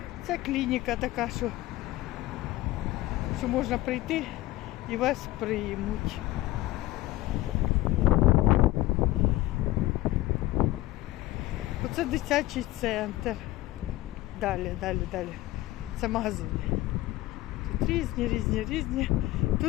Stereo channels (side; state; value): right; quieter; 17.2 dB